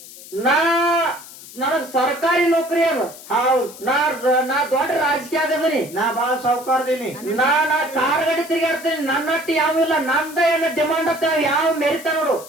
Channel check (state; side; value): noise; left; hiss, 17 dB below the sound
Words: ನನಗ್ ಸರ್ಕಾರಿ ನೌಕರಿ ಅದ. ಹೌದು. ನಾ ದೊಡ್ಡ ರಾಜಕೀಯ ಆಗದನಿ. ನಾ ಬಾಳ ಸಾವುಕಾರದೀನಿ. ನಾ ಕಾರ್ ಗಾಡಿ ತಿರ್ಗಾಡ್ತೀನಿ. ನನ್ನಟ್ಟಿ ಯಾವಿಲ್ಲ. ನಂದ ಏನ ಡಿಮಾಂಡ್ ಅಂತ ಯಾವ ಮೆರಿತ ನೋಡು.